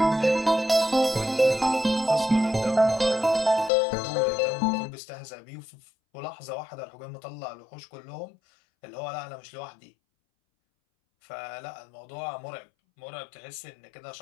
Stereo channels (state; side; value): drops out; right; at 3.7 s